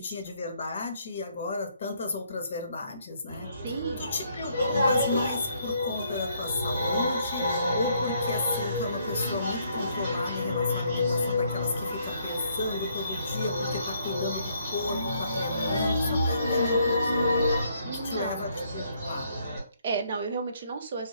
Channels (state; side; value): inverted; both; correlation -0.69